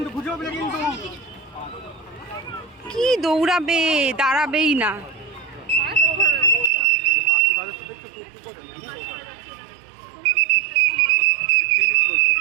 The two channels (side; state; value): left; drops out; at 6.7 s